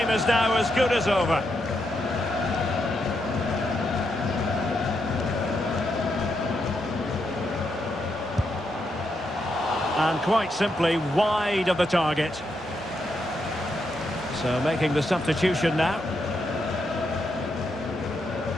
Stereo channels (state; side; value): normal; both; correlation 0.81